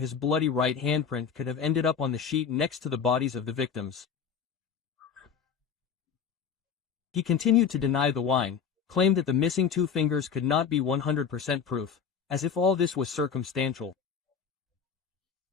bloody right handprint could have ended up on the sheet next to the bodies of the victims. He continued to deny the wine, claimed that the missing 2 fingers could not be 100% proof, as if all this was circumstantial.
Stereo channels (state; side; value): quieter; right; 6.8 dB